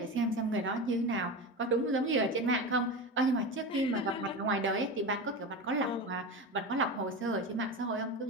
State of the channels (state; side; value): normal; both; correlation 0.24